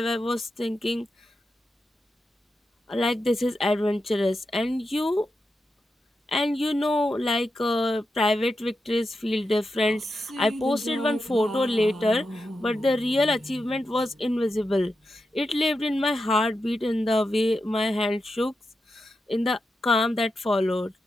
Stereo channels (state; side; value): normal; both; correlation 0.88